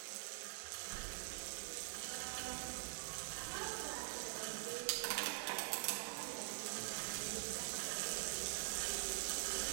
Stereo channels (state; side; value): silent; left; digital silence